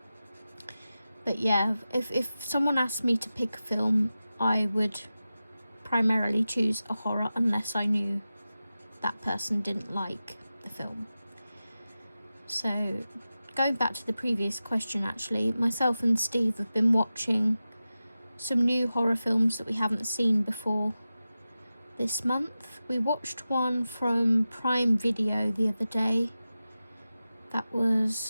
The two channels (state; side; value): inverted; both; correlation -0.94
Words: But yeah, if someone asked me to pick a film, I would primarily choose a horror, unless I knew that person didn't like the film. So going back to the previous question, actually, myself and Steve have been watching some new horror films that we haven't seen before this month. We watched one from Prime Video the other day. That